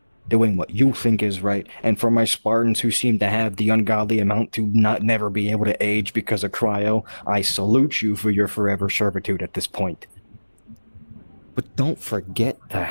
doing what you think is right, and for my Spartans who seem to have the ungodly amount to never be able to age because of cryo, I salute you for your forever servitude at this point. But don't forget to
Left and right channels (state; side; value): inverted; both; correlation -1.00